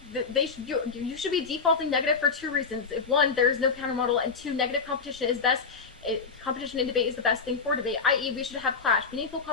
You should be defaulting negative for two reasons. If one, there is no counter model, and two, negative competition is best. Competition in debate is the best thing for debate, i.e. we should have clash. Meaningful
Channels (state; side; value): quieter; right; 5.1 dB